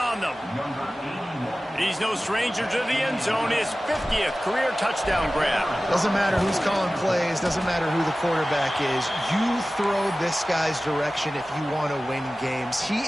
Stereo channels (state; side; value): normal; both; correlation 0.96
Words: them. He's no stranger to the end zone. His 50th career touchdown grab. Doesn't matter who's calling plays. Doesn't matter who the quarterback is. You throw this guy's direction if you want to win games. He